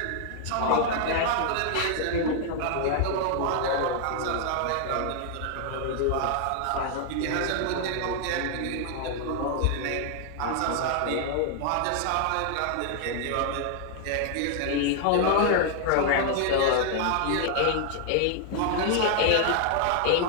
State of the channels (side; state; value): both; different; correlation 0.00